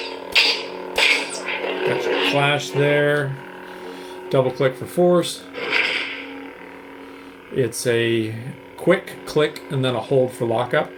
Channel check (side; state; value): both; identical; correlation 1.00